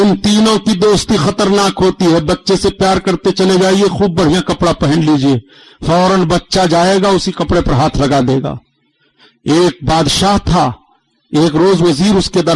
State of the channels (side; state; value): both; identical; correlation 1.00